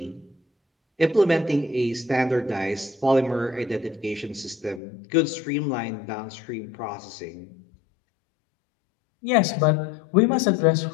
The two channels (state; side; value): drops out; right; at 4.8 s